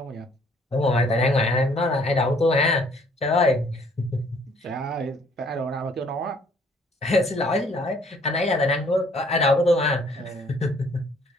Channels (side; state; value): both; normal; correlation 0.61